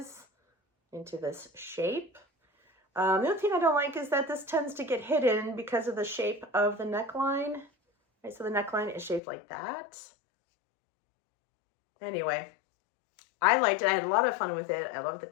into this shape. The other thing I don't like is that this tends to get hidden because of the shape of the neckline. Right, so the neckline is shaped like that. Anyway, I liked it. I had a lot of fun with it. I love the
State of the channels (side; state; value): right; drops out; at 9.2 s